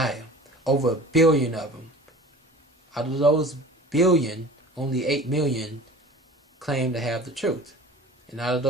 Over 1 billion of them. Out of those billion, only 8 million claim to have the truth. And out of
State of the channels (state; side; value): normal; both; correlation 0.41